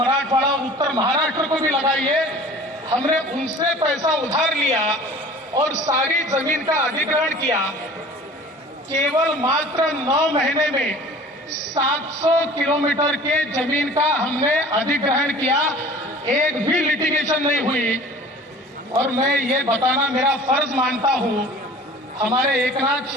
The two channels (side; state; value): both; normal; correlation 0.44